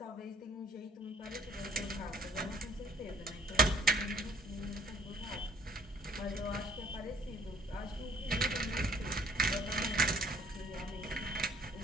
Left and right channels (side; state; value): both; normal; correlation 0.59